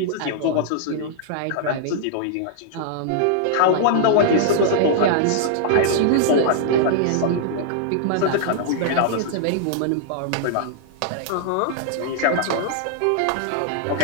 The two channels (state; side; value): different; both; correlation -0.01